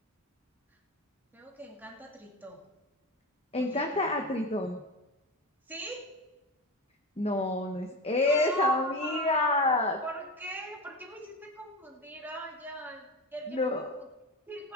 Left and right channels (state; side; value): normal; both; correlation 0.23